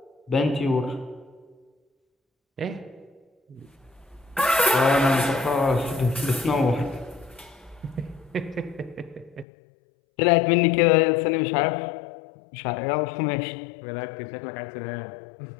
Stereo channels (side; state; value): right; drops out; at 9.5 s